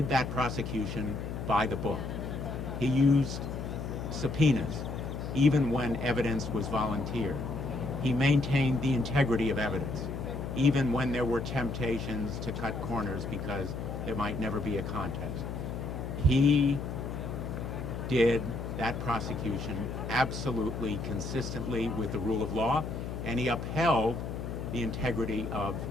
that prosecution by the book. He used subpoenas, even when evidence was volunteered. He maintained the integrity of evidence, even when there were temptations to cut corners because there might never be a contest. He did that prosecution absolutely consistently with the rule of law, and he upheld the integrity of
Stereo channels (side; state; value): left; noise; hum, 5 dB below the sound